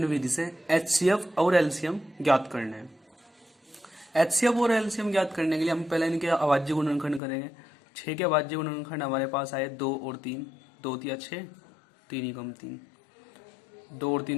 विधि से एचसीएफ और एलसीएम ज्ञात करने हैं। एचसीएफ और एलसीएम ज्ञात करने के लिए हम पहले इनके अभाज्य गुणनखंड करेंगे। 6 के अभाज्य गुणनखंड हमारे पास आए 2 और 3। 2 तिया 6, 3 एकम 3। 2 और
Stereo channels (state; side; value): drops out; right; at 7.2 s